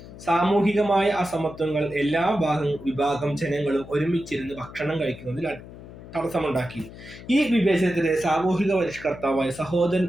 സാമൂഹികമായ അസമത്വങ്ങൾ എല്ലാ വിഭാഗം ജനങ്ങളും ഒരുമിച്ചിരുന്ന് ഭക്ഷണം കഴിക്കുന്നതിൽ തടസ്സമുണ്ടാക്കി. ഈ വിവേചനത്തിലെ സാമൂഹിക പരിഷ്കർത്താവായ സഹോദരൻ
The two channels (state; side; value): noise; left; hum, 16 dB below the sound